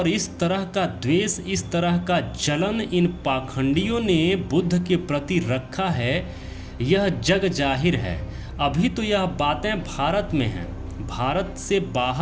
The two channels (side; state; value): both; identical; correlation 1.00